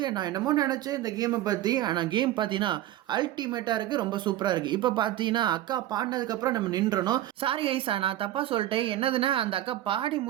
நான் என்னமோ நெனச்சேன் இந்த கேம பத்தி. ஆனா கேம் பார்த்தீங்கன்னா, அல்டிமேட்டா இருக்கு. ரொம்ப சூப்பரா இருக்கு. இப்ப பார்த்தீங்கன்னா, அக்கா பாடுனதுக்கு அப்புறம் நம்ம நின்றணும். சாரி கைஸ் நான் தப்பா சொல்ட்டேன். என்னதுன்னா, அந்த அக்கா பாடி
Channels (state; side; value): quieter; left; 13.8 dB